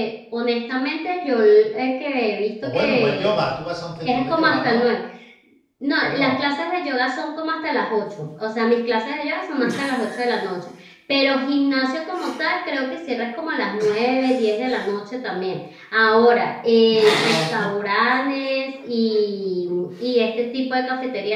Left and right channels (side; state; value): both; identical; correlation 1.00